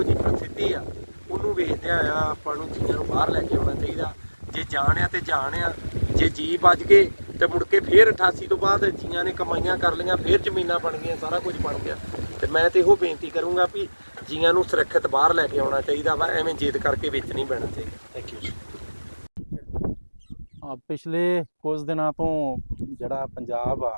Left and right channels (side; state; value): both; inverted; correlation -1.00